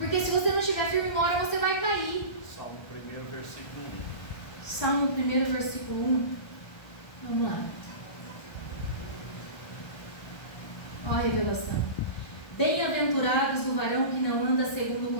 se você não estiver firme, uma hora você vai cair. Salmo 1, versículo 1. Salmo 1, versículo 1. Vamos lá. Olha a revelação. Bem-aventurados o varão que não anda segundo o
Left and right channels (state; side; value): late; right; 1.3 ms